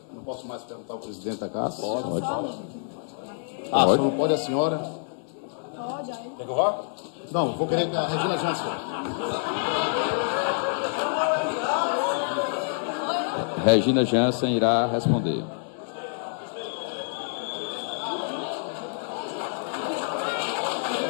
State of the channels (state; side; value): silent; right; digital silence